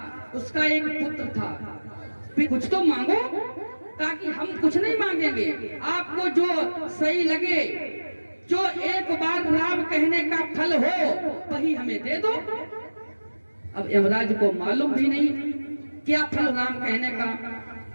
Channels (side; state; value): both; inverted; correlation -1.00